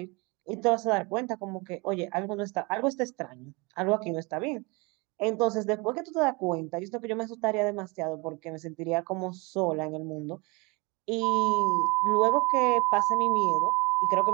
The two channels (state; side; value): quieter; left; 27.5 dB